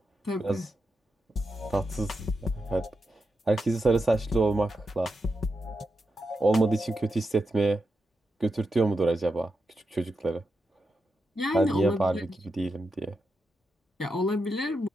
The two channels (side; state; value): both; normal; correlation 0.87